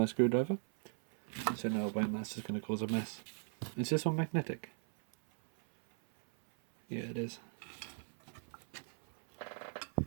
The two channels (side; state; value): left; silent; 52 dB below the other